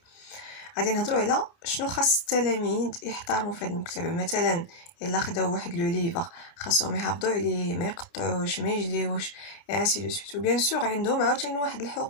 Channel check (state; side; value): late; right; 30 ms